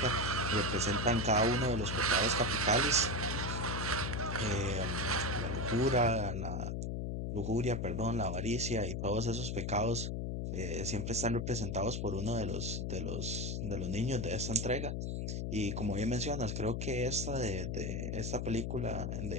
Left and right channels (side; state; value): left; noise; hum, 2 dB below the sound